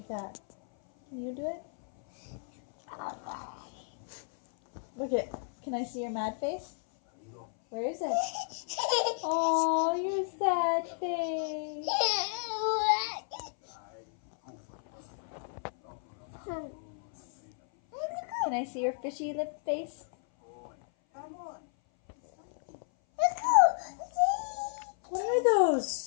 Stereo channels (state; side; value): silent; right; 56 dB below the other